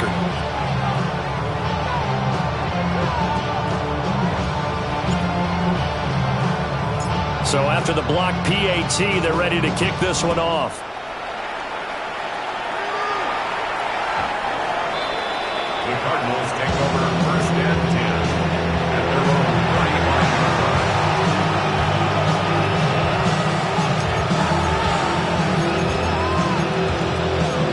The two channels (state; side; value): identical; both; correlation 1.00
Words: So after the block PAT, they're ready to kick this one off. The Cardinals take over 1st and 10 at their own 35-yard